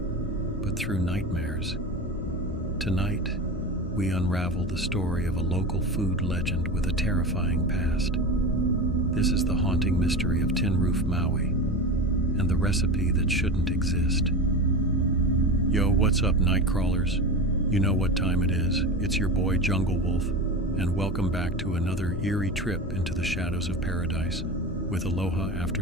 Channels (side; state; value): both; normal; correlation 0.26